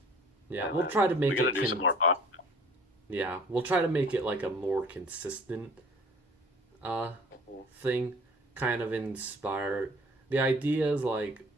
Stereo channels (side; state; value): both; normal; correlation 0.50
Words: Yeah, And, we'll try to we make gotta it. do some more pop. Yeah, we'll try to make it like a more consistent thing, kind of inspired. The idea is like